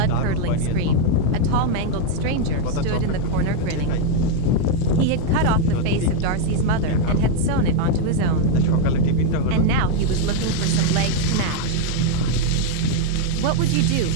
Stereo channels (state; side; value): different; both; correlation 0.01